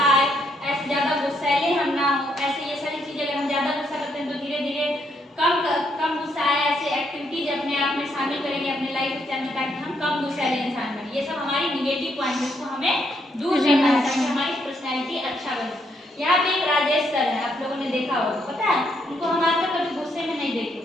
आए, ऐसे ज्यादा गुस्सैले हम ना हो। ऐसे ये सारी चीजें अगर हम ज्यादा गुस्सा करते हैं तो धीरे धीरे कम गुस्सा आए, ऐसे एक्टिविटीज अपने आप में शामिल करेंगे अपने लाइफ स्टाइल में, ताकि हम कम गुस्सैले इंसान बने। ये सब हमारी निगेटिव पॉइंट है, इसको हमें दूर करना है ताकि हमारी पर्सनैलिटी अच्छा बने। यहाँ पे एक राजेश सर है, आप लोगों ने देखा होगा, पता है उनको हम आज तक कभी गुस्से में नहीं देखे,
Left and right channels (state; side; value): normal; both; correlation 0.74